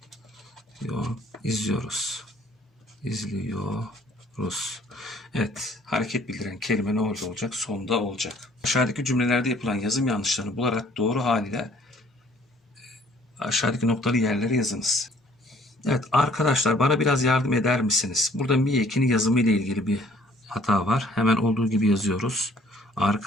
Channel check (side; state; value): both; normal; correlation 0.59